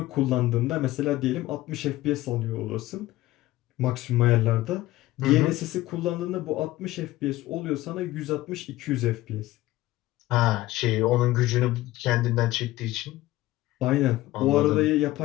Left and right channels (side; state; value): right; quieter; 17.0 dB